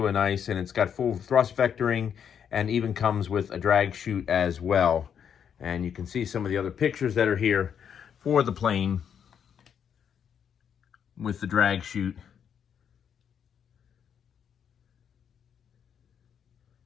nice, and it's got full thrust vectoring, and even comes with a drag chute as well. And you can see some of the other pictures that are here for the plane with the drag chute.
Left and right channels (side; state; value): right; quieter; 8.0 dB